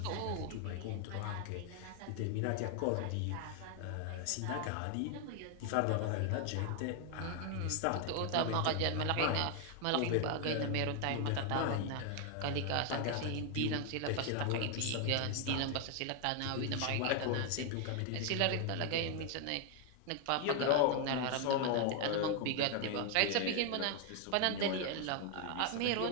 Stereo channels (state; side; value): different; both; correlation 0.00